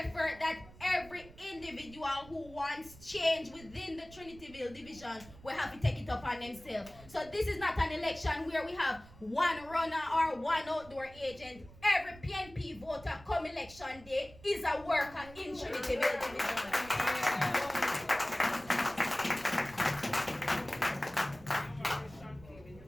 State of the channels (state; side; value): noise; right; rumble, 20 dB below the sound